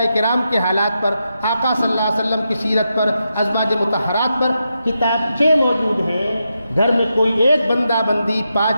کرام کے حالات پر، آقا صلی اللہ علیہ وسلم کی سیرت پر، ازواج مطہرات پر کتابچے موجود ہیں. گھر میں کوئی ایک بندہ بندی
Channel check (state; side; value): inverted; both; correlation -0.86